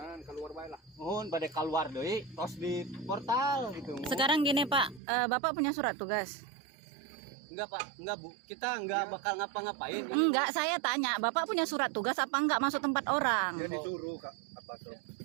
keluar bae lah. Mohon bade keluar deui tos di portal gitu. Mohon. Sekarang gini Pak, Bapak punya surat tugas? Enggak Pak, enggak Bu. Kita enggak bakal ngapa-ngapain. Enggak, saya tanya, Bapak punya surat tugas apa enggak masuk tempat orang? Dia disuruh Kak apa tuh?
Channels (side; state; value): left; drops out; at 5.0 s